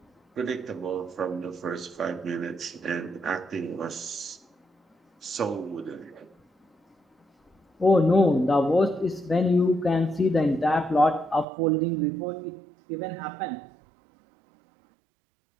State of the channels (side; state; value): left; drops out; at 11.5 s